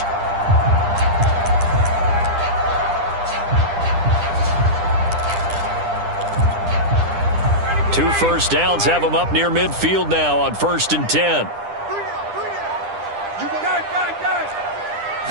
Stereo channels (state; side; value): late; left; 9.9 ms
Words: Two first downs have him up near midfield now on 1st and 10.